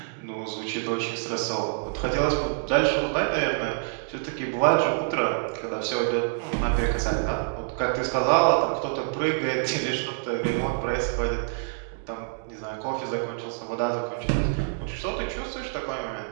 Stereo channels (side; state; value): left; silent; digital silence